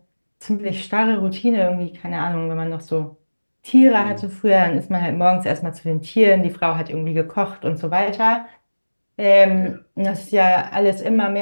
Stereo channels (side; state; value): both; inverted; correlation -1.00